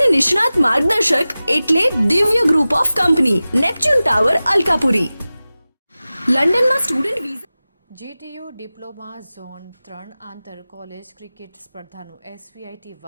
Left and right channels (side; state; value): both; inverted; correlation -0.96